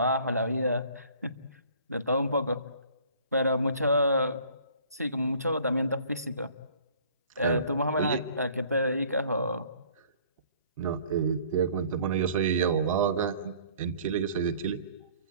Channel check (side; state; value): both; inverted; correlation -0.54